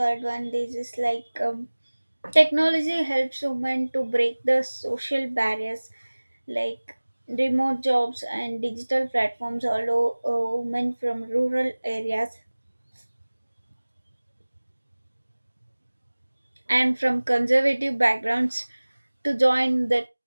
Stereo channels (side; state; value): both; inverted; correlation -1.00